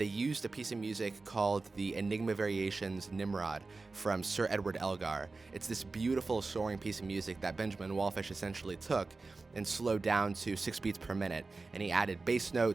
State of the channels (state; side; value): quieter; left; 3.8 dB